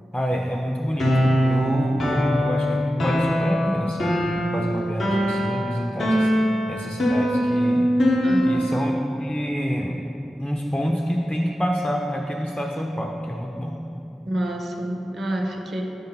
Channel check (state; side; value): normal; both; correlation 0.93